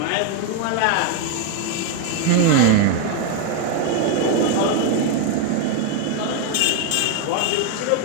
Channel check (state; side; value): different; both; correlation 0.01